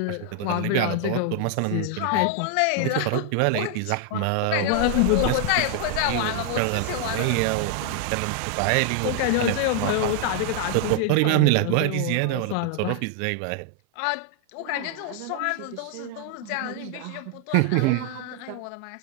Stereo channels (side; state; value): both; different; correlation 0.00